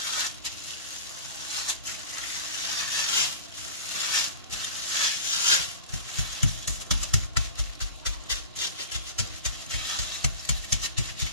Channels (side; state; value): both; inverted; correlation -0.37